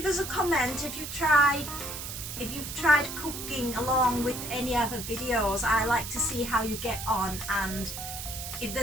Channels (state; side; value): noise; right; hiss, 7 dB below the sound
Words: us a comment if you've tried cooking along with any other videos. I like to see how you get on, and if